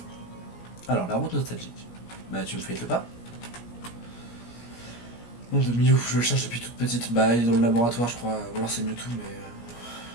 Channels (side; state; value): right; late; 17 ms